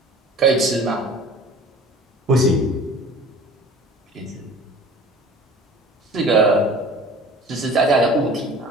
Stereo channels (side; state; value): both; normal; correlation 0.44